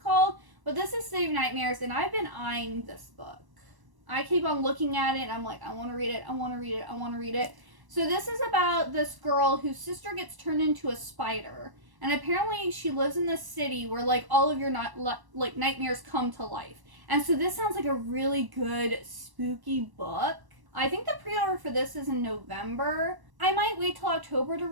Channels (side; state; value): left; late; 1.1 ms